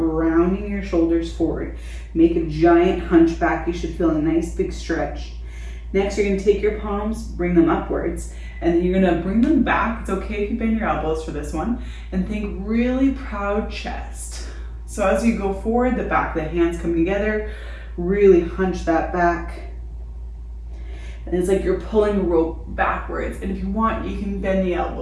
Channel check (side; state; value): both; identical; correlation 1.00